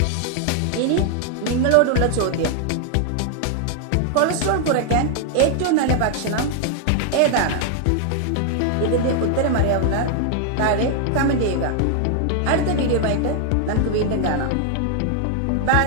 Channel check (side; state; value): both; different; correlation 0.00